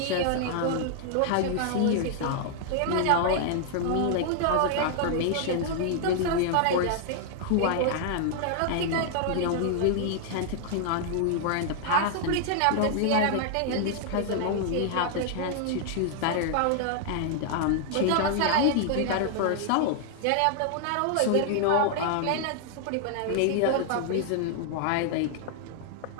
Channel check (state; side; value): different; both; correlation -0.01